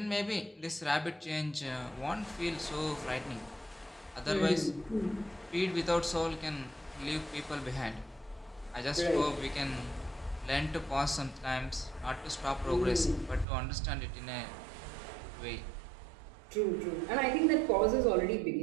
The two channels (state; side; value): drops out; left; at 13.5 s